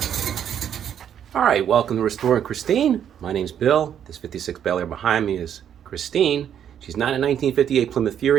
Alright, welcome to Restoring Christine. My name's Bill. This 56 Bel Air behind me is Christine. She's not a 1958 Plymouth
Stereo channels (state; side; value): quieter; left; 9.2 dB